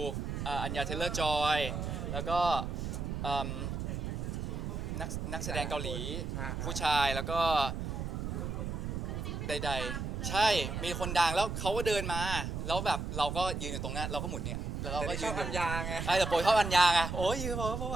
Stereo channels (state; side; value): noise; right; rumble, 3 dB below the sound